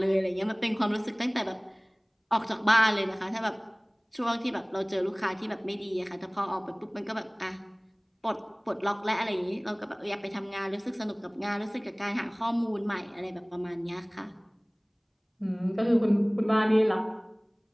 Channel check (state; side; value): identical; both; correlation 1.00